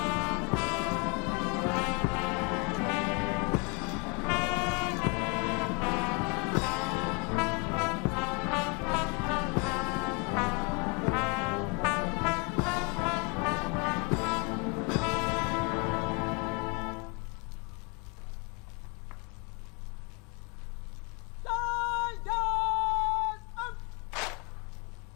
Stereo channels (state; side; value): quieter; right; 32.1 dB